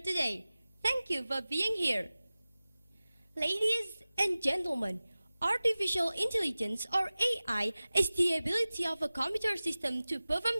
Thank you for being here. Ladies and gentlemen, artificial intelligence, or AI, is the ability of a computer system to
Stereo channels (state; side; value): inverted; both; correlation -0.97